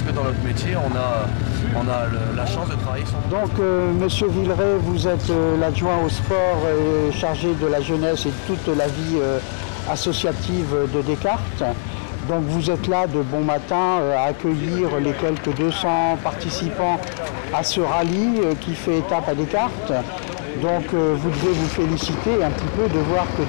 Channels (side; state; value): right; silent; digital silence